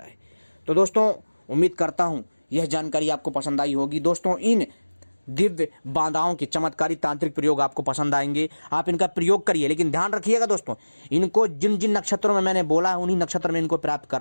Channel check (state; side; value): inverted; both; correlation -1.00